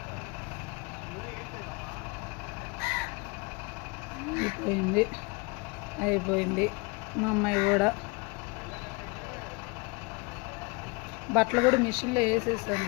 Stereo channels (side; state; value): right; quieter; 28.3 dB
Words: అయిపోయింది అయిపోయింది. మా అమ్మాయి కూడా బట్టలు కూడా మిషన్లో వేసేసాను